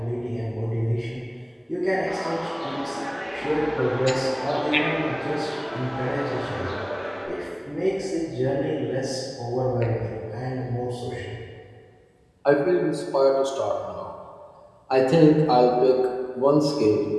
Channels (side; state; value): both; identical; correlation 1.00